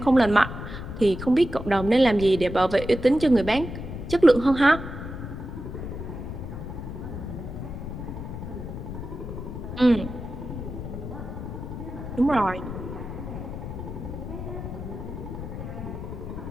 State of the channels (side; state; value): left; noise; rumble, 8 dB below the sound